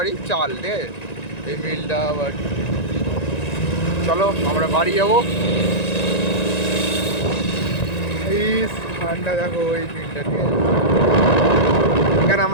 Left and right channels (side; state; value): right; late; 1.9 ms